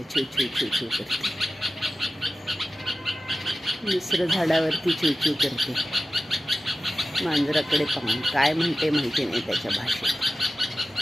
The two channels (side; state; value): both; normal; correlation 0.93